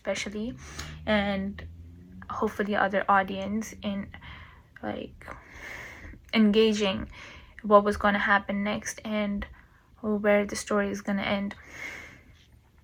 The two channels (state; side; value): identical; both; correlation 1.00